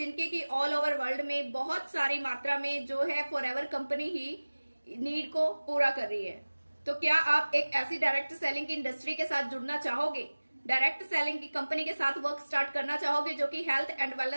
की ऑल ओवर वर्ल्ड में बहुत सारी मात्रा में जो है फॉरएवर कंपनी ही नीड को पूरा कर रही है। तो क्या आप एक ऐसी डायरेक्ट सेलिंग की इंडस्ट्री के साथ जुड़ना चाहोगे, डायरेक्ट सेलिंग की कंपनी के साथ वर्क स्टार्ट करना चाहोगे जो कि हेल्थ एंड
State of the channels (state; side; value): inverted; both; correlation -1.00